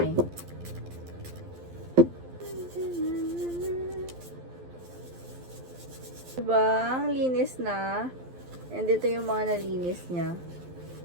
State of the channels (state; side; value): late; left; 12 ms